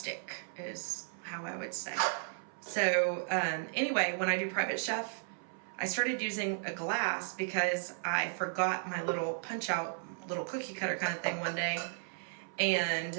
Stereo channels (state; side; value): silent; left; 55 dB below the other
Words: is how I would say. So anyway, when I do private chef, I started using a glass because I forgot my little punch out, little cookie cutter kind of thing one day.